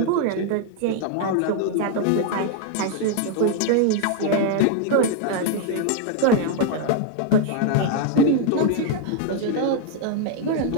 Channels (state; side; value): different; both; correlation 0.00